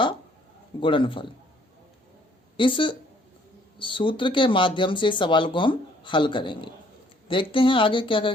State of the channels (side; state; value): both; normal; correlation 0.62